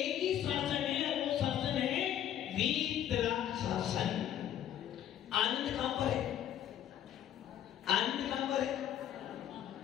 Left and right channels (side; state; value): right; quieter; 10.8 dB